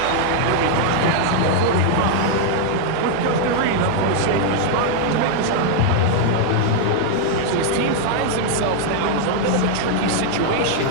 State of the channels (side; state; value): both; different; correlation 0.00